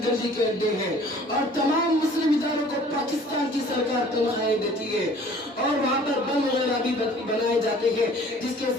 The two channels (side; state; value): both; normal; correlation 0.51